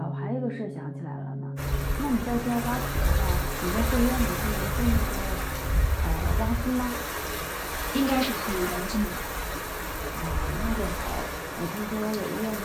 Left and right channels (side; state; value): both; identical; correlation 1.00